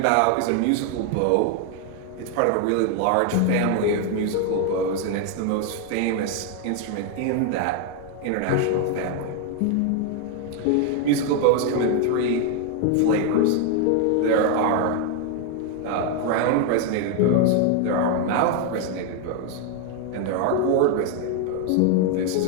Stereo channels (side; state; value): both; different; correlation 0.01